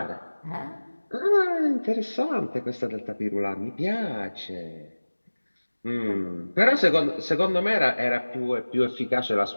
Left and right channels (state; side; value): inverted; both; correlation -1.00